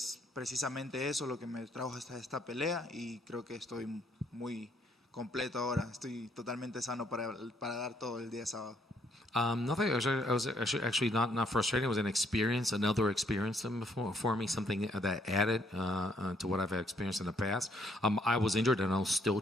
precisamente eso lo que me trajo hasta esta pelea, y creo que estoy muy completo ahora. Estoy totalmente sano para dar todo el día sábado. Nothing. I was actually not frustrating. It was an experience, another experience for me, something that added to what I've experienced in the past. I was injured and I was still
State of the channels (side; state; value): both; normal; correlation 0.69